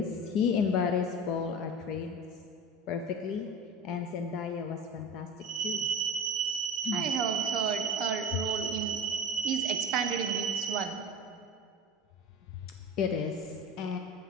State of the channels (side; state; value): both; normal; correlation 0.32